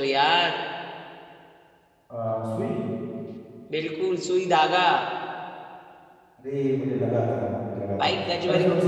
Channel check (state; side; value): identical; both; correlation 1.00